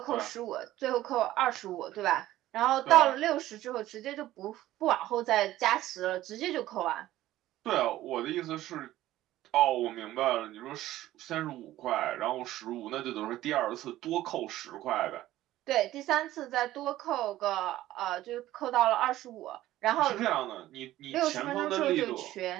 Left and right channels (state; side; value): quieter; left; 14.8 dB